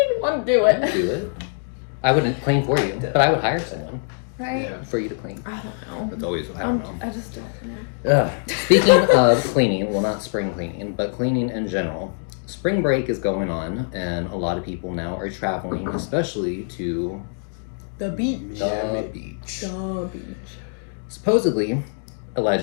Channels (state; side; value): silent; right; 62 dB below the other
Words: want to do it. Do it. I wouldn't clean for you, but I would hire someone. right? Yeah. for you to clean. I don't know. It's always, I don't know. I just don't know. Speaking of cleaning, well, not spring cleaning, but cleaning in general, spring break is going on, and a lot of people now are traveling, especially to The beach. the beach. The beach. Supposedly,